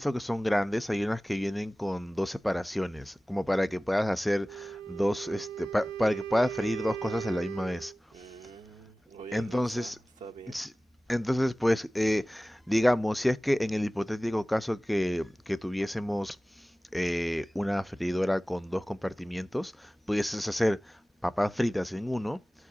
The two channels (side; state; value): both; normal; correlation 0.97